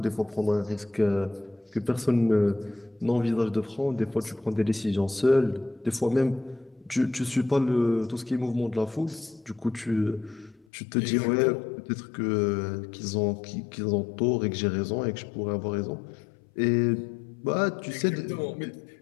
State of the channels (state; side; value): drops out; right; at 10.7 s